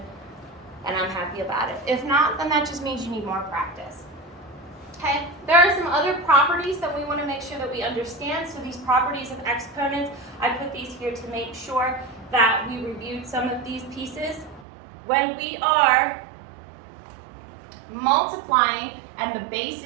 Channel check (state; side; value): drops out; left; at 14.7 s